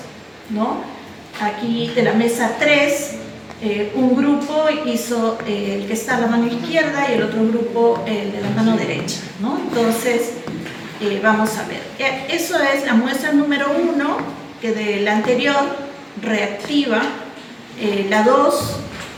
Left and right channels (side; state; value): both; identical; correlation 1.00